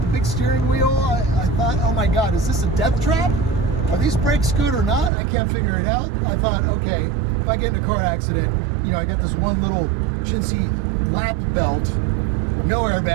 the big steering wheel, I thought, oh my God, is this a death trap? Are these brakes good or not? I can't figure it out. I thought, okay, if I get in a car accident, you know, I got this one little chintzy lap belt, no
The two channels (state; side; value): drops out; left; at 5.1 s